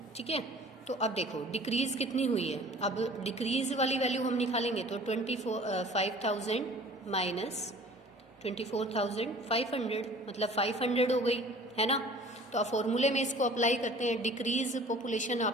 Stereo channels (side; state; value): both; normal; correlation 0.47